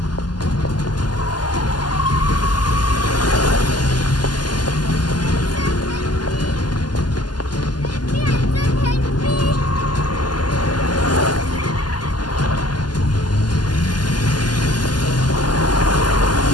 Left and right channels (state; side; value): late; right; 0.70 ms